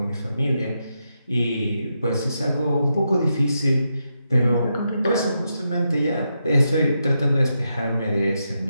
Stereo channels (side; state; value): both; inverted; correlation -0.84